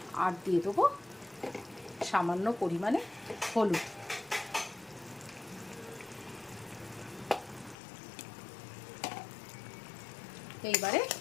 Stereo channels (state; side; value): drops out; right; at 7.8 s